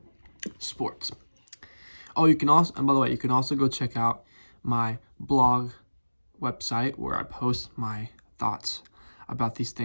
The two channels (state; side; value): inverted; both; correlation -1.00